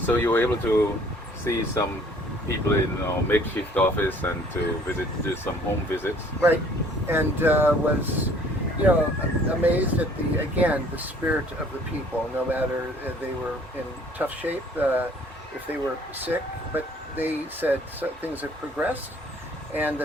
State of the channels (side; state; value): both; normal; correlation 0.56